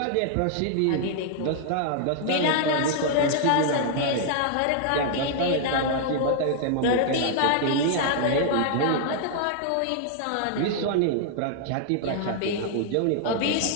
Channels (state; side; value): different; both; correlation -0.01